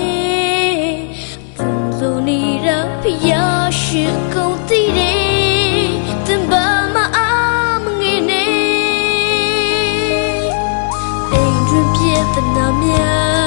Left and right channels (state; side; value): silent; right; digital silence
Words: သူလိုနေတာဖျားရှိကုန်တည်တယ်တင်ပါမအားမငယ်နဲ့အိမ်တွင်ပြည့်တနာမျာ